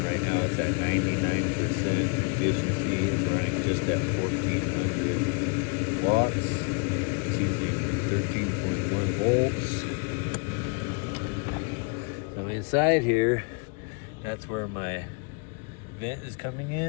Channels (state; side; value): quieter; right; 36.3 dB